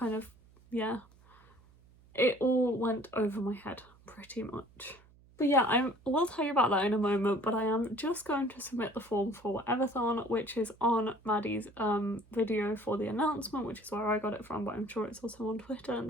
of, yeah, it all went over my head pretty much. But yeah, I will tell you about that in a moment, but I am just going to submit the form for Everthon, which is on Maddie's video for the announcement, which is where I got it from, but I'm sure it's also on Twitter and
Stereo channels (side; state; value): right; noise; hum, 27 dB below the sound